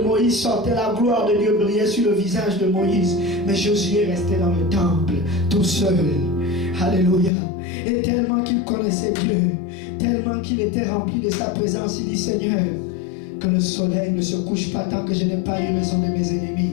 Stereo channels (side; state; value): right; drops out; at 7.3 s